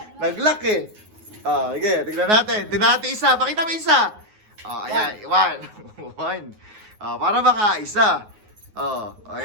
Nag-lock eh. Oh, sige, tignan natin. Tignan natin isa. Pakita mo isa. Oh, ayan, one. One. Oh, para makaisa. Oh,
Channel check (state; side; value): late; left; 9.5 ms